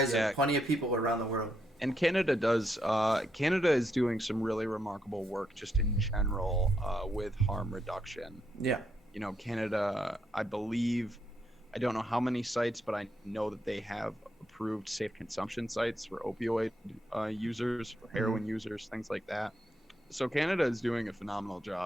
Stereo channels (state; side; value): normal; both; correlation 0.79